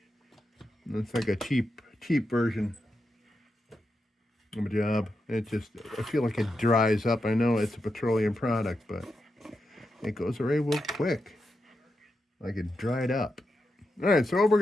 it's like a cheap version of a job. It just, I feel like it dries up. I know it's a petroleum product, but it goes away real quick. Like it dried up. All right, so what we're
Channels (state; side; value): normal; both; correlation 0.87